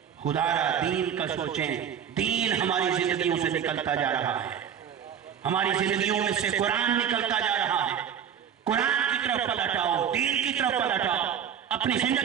خدا را دین کا سوچیں، دین ہماری زندگیوں سے نکلتا جا رہا ہے، ہماری زندگیوں میں سے قرآن نکلتا جا رہا ہے۔ قرآن کی طرف پلٹ آؤ، دین کی طرف پلٹ آؤ، اپنی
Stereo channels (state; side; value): quieter; left; 8.6 dB